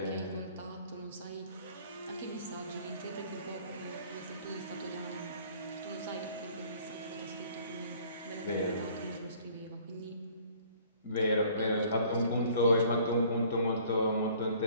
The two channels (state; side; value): inverted; both; correlation -0.55